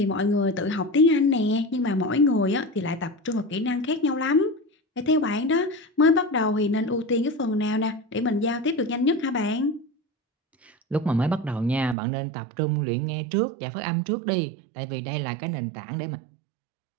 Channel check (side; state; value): left; drops out; at 12.0 s